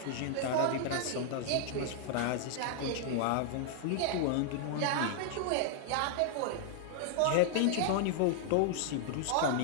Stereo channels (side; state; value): both; different; correlation -0.01